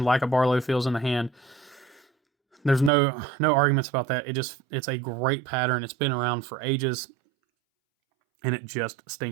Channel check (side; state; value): left; drops out; at 2.9 s